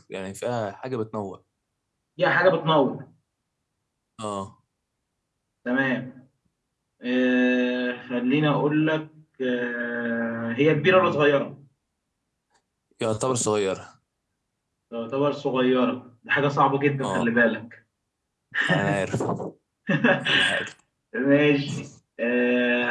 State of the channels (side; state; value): both; identical; correlation 1.00